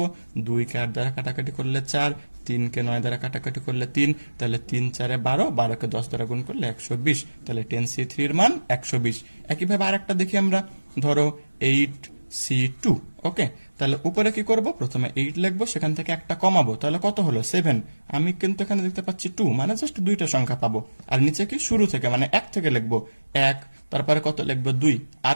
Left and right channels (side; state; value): both; inverted; correlation -1.00